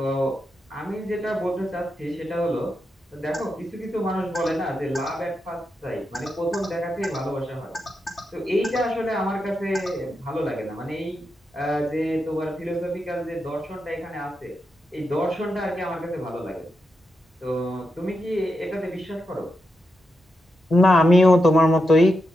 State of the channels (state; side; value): normal; both; correlation 0.86